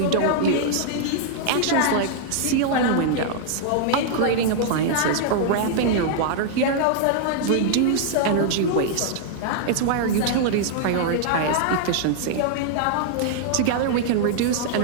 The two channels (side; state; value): both; different; correlation -0.01